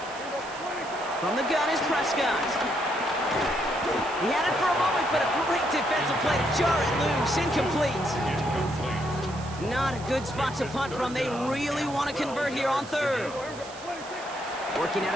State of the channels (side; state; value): right; noise; hiss, 17 dB below the sound